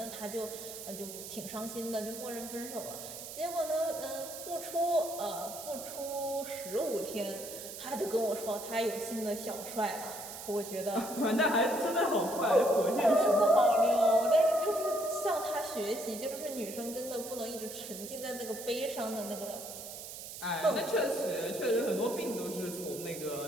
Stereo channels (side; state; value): right; noise; hiss, 10 dB below the sound